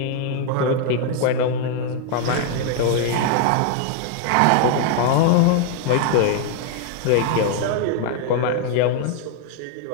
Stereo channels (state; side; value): different; both; correlation 0.00